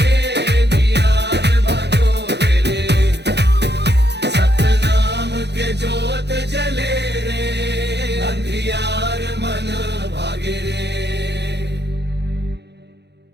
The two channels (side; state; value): left; late; 0.50 ms